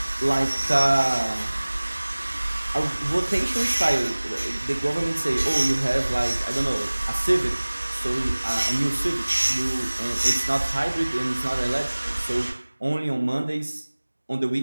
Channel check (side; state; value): both; inverted; correlation -1.00